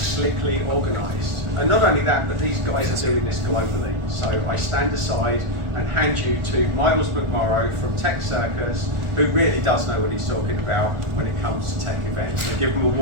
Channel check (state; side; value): late; left; 1.4 ms